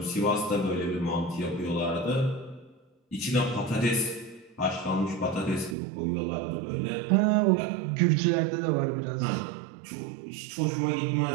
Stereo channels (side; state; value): left; drops out; at 5.8 s